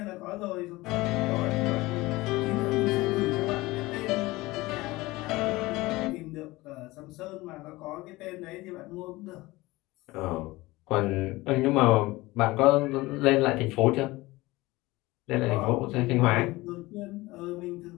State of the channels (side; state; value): right; quieter; 20.2 dB